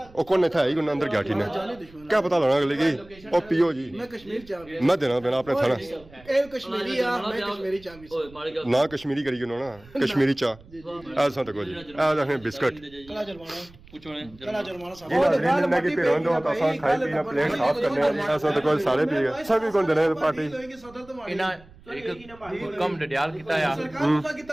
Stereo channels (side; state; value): right; noise; rumble, 24 dB below the sound